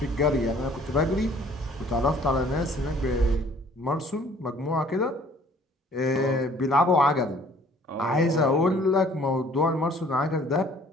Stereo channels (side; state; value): both; normal; correlation 0.56